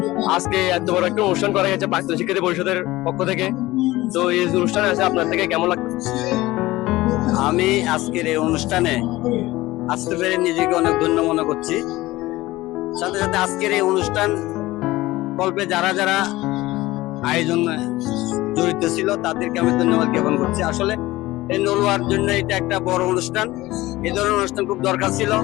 আজকে এত বড় একটা অনুষ্ঠান করা হয়েছে প্রাক্তন শিক্ষার্থী পরিষদের পক্ষ থেকে। তো এই অনুষ্ঠানে আছে আপনার থেকে কেমন লাগছে? আমি আজকের এই অনুষ্ঠানে আসতে পেরে নিজেকে অনেক ধন্য মনে করছি। সাথে সাথে আজকের এই অনুষ্ঠান কল্পে যারা যারা আয়োজন জড়িত ছিল তাদেরকে আমি ধন্যবাদ জ্ঞাপন করছি। আসলে এই নলুয়ার জন্য এটা একটা বড় অনুষ্ঠান, এই ধরনের অনুষ্ঠান খুব দরকার ছিল।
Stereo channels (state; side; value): quieter; right; 18.3 dB